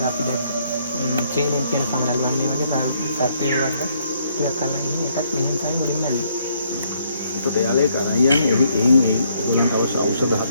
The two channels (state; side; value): inverted; both; correlation -0.70